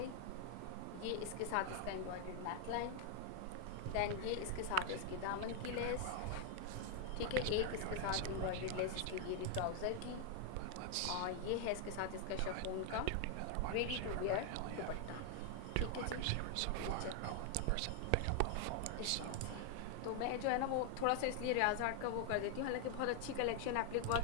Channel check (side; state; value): both; different; correlation 0.00